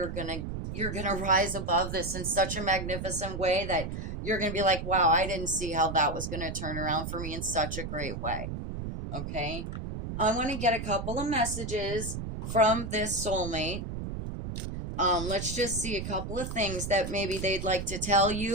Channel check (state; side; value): noise; right; rumble, 6 dB below the sound